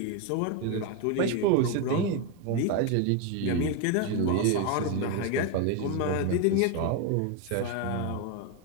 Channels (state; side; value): different; both; correlation 0.02